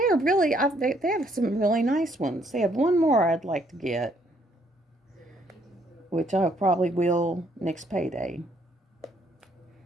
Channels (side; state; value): both; normal; correlation 0.68